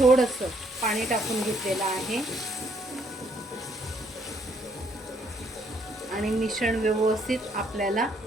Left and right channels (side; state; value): both; normal; correlation 0.68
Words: पाणी टाकून घेतलेलं आहे आणि मिश्रण व्यवस्थित आपल्याला